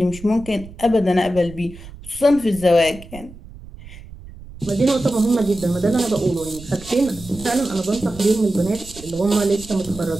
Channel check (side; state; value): right; noise; rumble, 17 dB below the sound